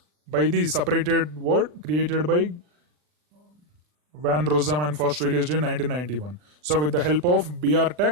by the separated word created by Van Rossum and first released in 1991. So with the help of BR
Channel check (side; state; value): left; late; 40 ms